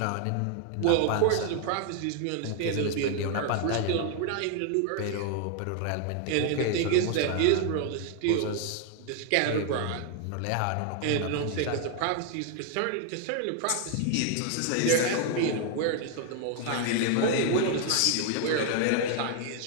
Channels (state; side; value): different; both; correlation 0.00